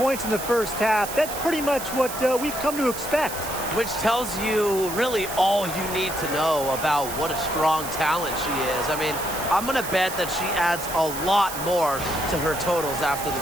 in the first half, that's pretty much what we've come to expect. Which tells you really all you need to know about what a strong talent she is. I mean, I'm going to bet that she adds a lot more to her totals after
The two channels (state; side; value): noise; right; hiss, 9 dB below the sound